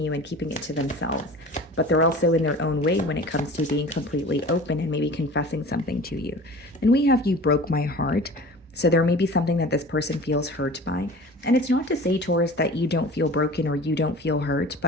and keeping it to themselves. But they're also in their own way when it comes to being completely open and maybe confessing something to you. And we have You Broke My Heart. So there may be something that this person feels hurt by. And it's not to say, Taurus, that you don't feel broken or you don't feel hurt,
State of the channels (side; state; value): both; normal; correlation 0.40